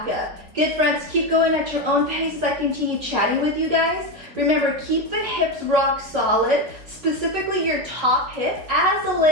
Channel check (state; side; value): late; left; 4.2 ms